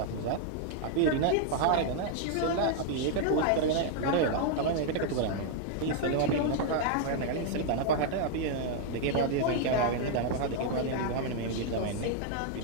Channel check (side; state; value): both; different; correlation 0.00